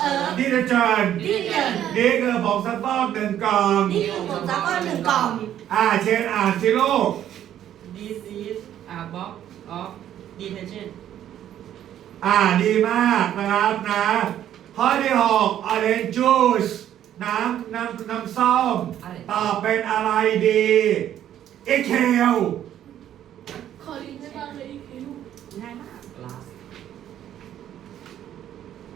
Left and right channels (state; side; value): quieter; left; 11.0 dB